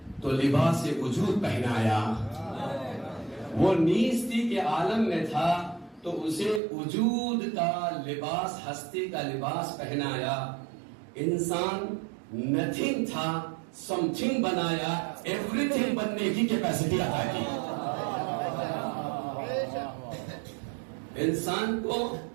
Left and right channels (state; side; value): drops out; left; at 6.6 s